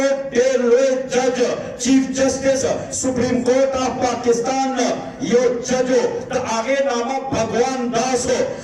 दे लोए जज chief justice supreme court of Pakistan यो जजो द आगे नामा भगवान दास हो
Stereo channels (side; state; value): both; identical; correlation 1.00